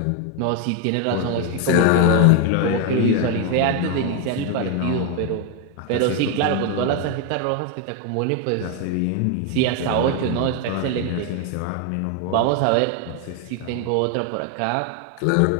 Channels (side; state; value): both; different; correlation 0.01